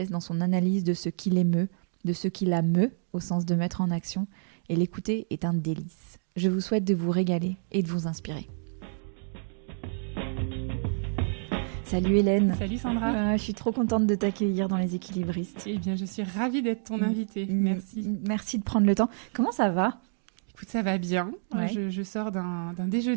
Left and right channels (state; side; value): silent; left; digital silence